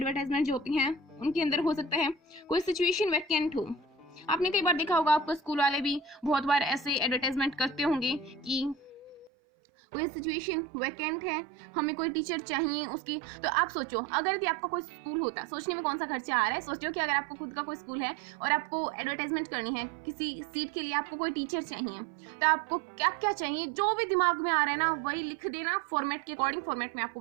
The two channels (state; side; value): drops out; left; at 9.3 s